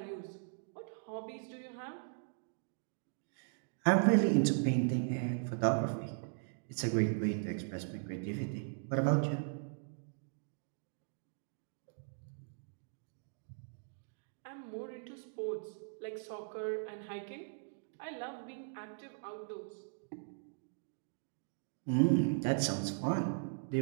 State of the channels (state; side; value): silent; left; digital silence